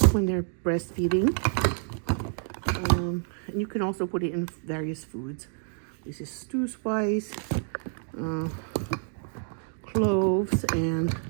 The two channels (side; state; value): left; silent; 59 dB below the other